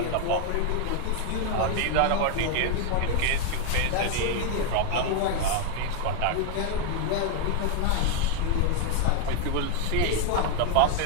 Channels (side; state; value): both; different; correlation 0.00